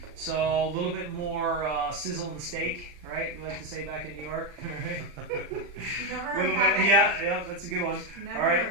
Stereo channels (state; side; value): late; left; 40 ms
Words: So, a little bit more sizzle in the steak, right? We like to say back in New York, right? Never A heard little that bit, one. yeah, that's a good one. Never All right. heard